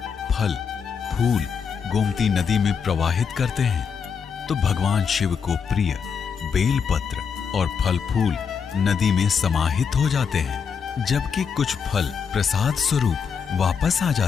फल, फूल गोमती नदी में प्रवाहित करते हैं, तो भगवान शिव को प्रिय बेलपत्र और फल फूल नदी में समाहित हो जाते हैं, जबकि कुछ फल प्रसाद स्वरूप वापस आ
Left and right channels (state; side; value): quieter; right; 6.4 dB